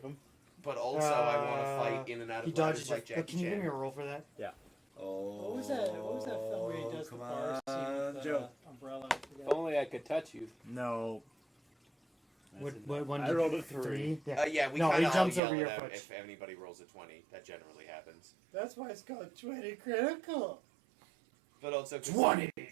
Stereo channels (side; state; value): left; drops out; at 15.4 s